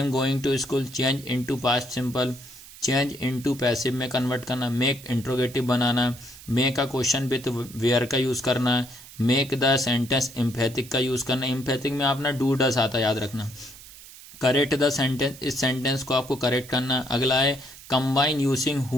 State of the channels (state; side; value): noise; right; hiss, 18 dB below the sound